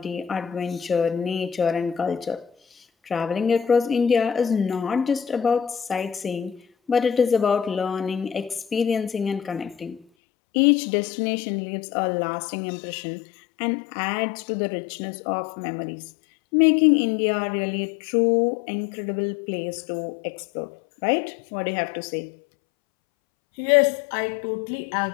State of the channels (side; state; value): right; drops out; at 10.1 s